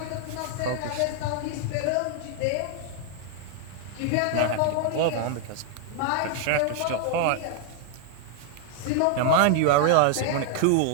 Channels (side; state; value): both; different; correlation 0.00